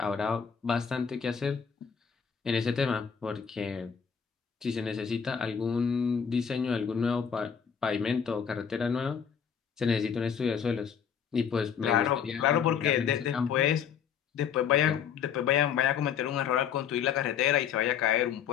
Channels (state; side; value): quieter; right; 7.5 dB